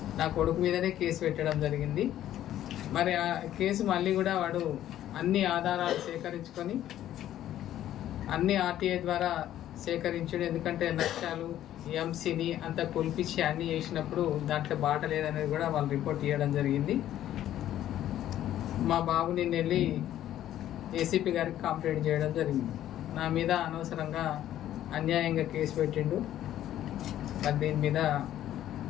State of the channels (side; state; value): right; quieter; 12.3 dB